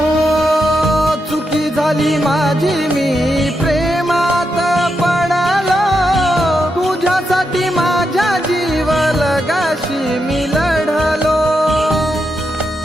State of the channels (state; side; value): normal; both; correlation 0.84